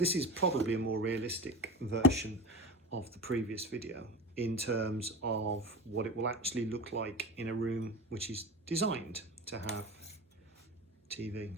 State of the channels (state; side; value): normal; both; correlation 0.28